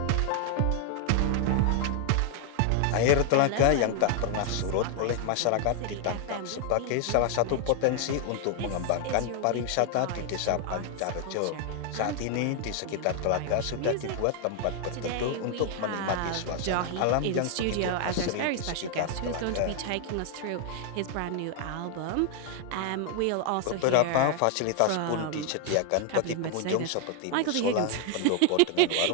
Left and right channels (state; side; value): different; both; correlation 0.00